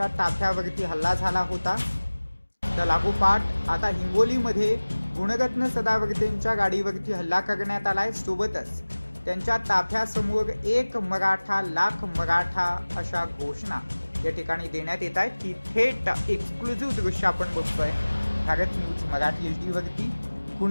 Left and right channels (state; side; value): inverted; both; correlation -1.00